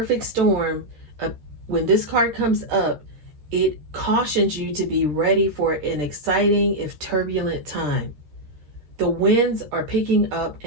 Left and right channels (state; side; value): late; left; 13 ms